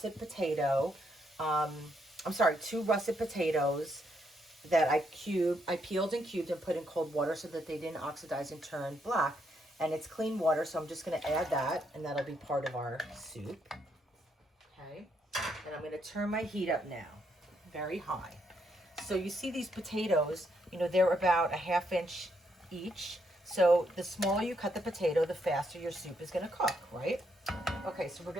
potato, two russet potatoes that I peeled and cubed and put in cold water so that they didn't oxidize and turn black. And it's clean water, so I'm just going to add that, and that'll be part of our soup. Okay, and I'm going to turn my heat up now, very high. So you see these potatoes, they're about a ½ inch each. So the smaller you cut the potato, the faster your soup is going to cook, right? Okay, so we're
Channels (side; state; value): both; normal; correlation 0.76